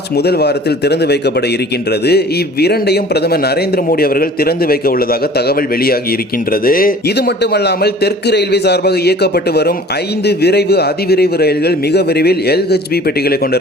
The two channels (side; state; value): both; normal; correlation 0.47